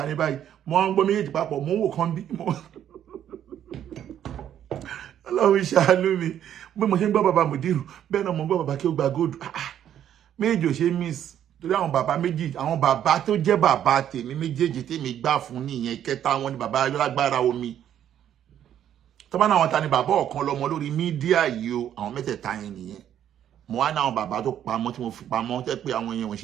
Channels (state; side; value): quieter; left; 10.3 dB